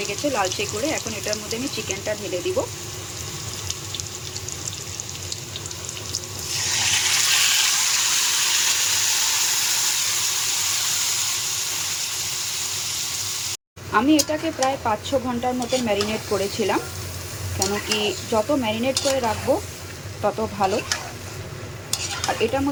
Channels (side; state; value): both; identical; correlation 1.00